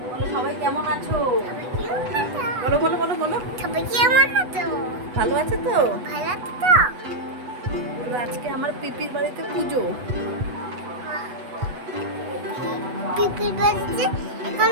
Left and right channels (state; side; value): late; left; 8.1 ms